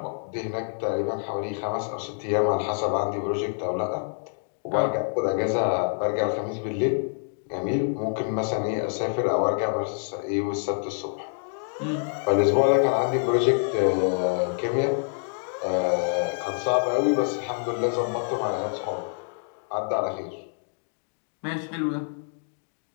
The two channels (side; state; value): right; silent; digital silence